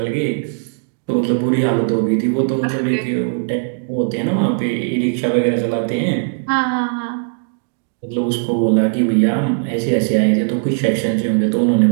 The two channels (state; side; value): silent; left; digital silence